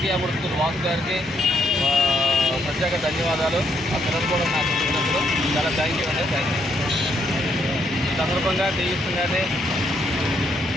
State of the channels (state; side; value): normal; both; correlation 0.74